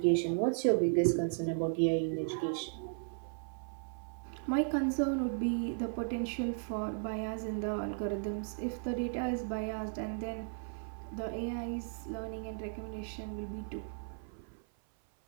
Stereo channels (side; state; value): left; silent; 54 dB below the other